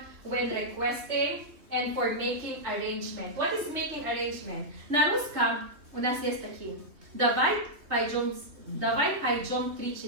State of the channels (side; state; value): left; late; 3.1 ms